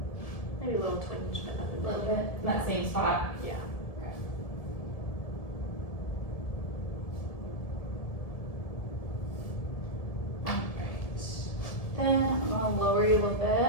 Maybe a little twinge, but nothing A little big. bit, in that same spot. Yeah. Alright. Then I'm gonna lower you a little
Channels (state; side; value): late; right; 1.7 ms